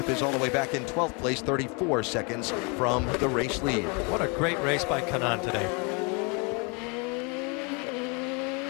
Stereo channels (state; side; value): quieter; right; 32.2 dB